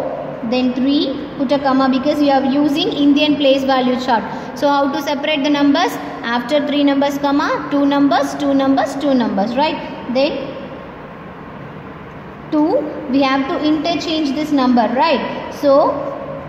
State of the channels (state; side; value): identical; both; correlation 1.00